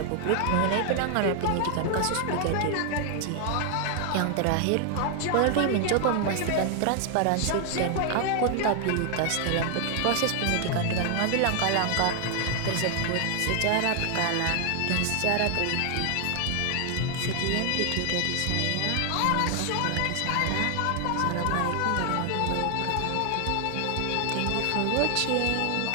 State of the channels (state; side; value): different; both; correlation 0.00